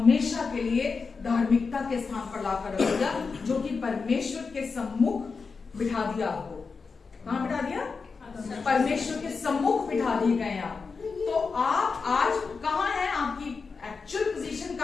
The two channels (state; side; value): quieter; right; 4.8 dB